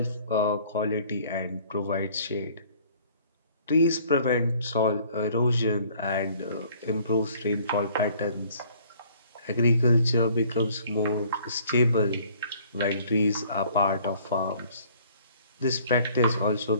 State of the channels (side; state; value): both; inverted; correlation -0.56